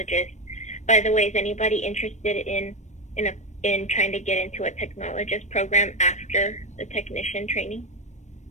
By the way, is anybody interested in trying to get into a technologist program after the technician training?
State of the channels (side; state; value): right; late; 0.34 ms